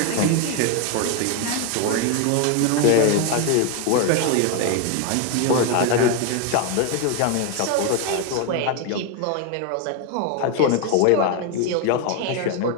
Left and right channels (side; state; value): both; different; correlation 0.01